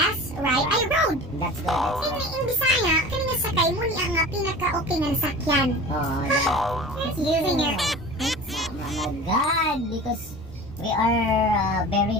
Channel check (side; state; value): both; normal; correlation 0.37